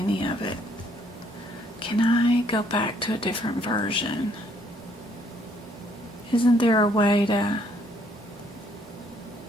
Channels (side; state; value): both; normal; correlation 0.66